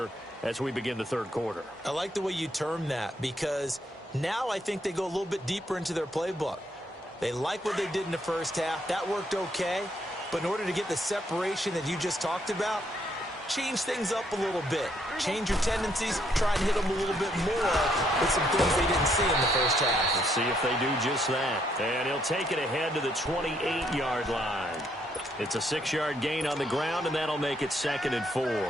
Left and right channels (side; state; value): both; normal; correlation 0.72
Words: as we begin the third quarter. I like the way you term that because now I think they go a little bit deeper into their playbook. They like what they did in the first half. That worked okay. But in order to get the separation that you just talked about, change things up a little bit. Change your tendencies. Try and hit them a little bit more with some things they didn't see in the first half. We'll see if they do just that. And he'll take it ahead to the 28-yard line. It's a 6-yard gain on the ground, and that'll make it 2nd and 4.